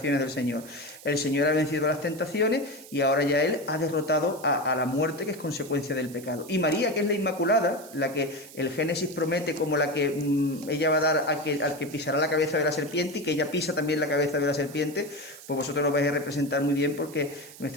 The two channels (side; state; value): right; noise; hiss, 18 dB below the sound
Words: del Señor. El Señor ha vencido las tentaciones y ahora ya Él ha derrotado a la muerte, que es consecuencia del pecado. Y María, que es la Inmaculada, la que el Génesis promete como la que ella va a dar al que pisará la cabeza de la serpiente, y que ella pisa también la cabeza de la serpiente, pues vosotros lo vais a representar muy bien, porque